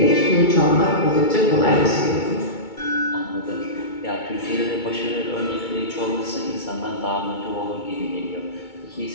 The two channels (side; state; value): right; late; 2.2 ms